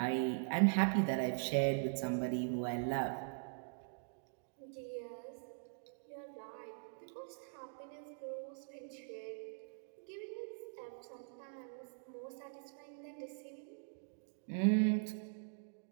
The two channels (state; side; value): silent; left; digital silence